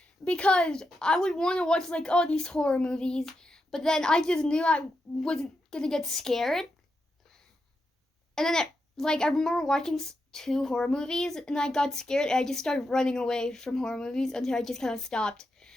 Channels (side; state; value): both; normal; correlation 0.86